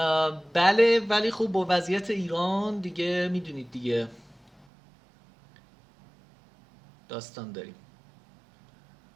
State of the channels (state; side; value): drops out; left; at 4.7 s